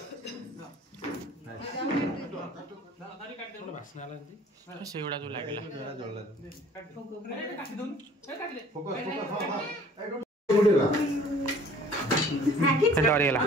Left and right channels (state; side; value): normal; both; correlation 0.52